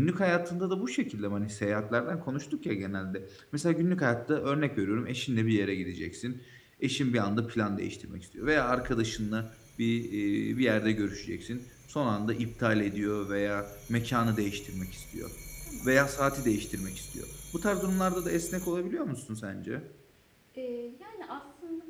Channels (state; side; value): identical; both; correlation 1.00